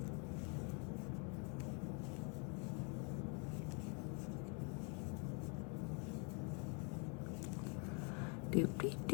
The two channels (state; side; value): quieter; right; 35.7 dB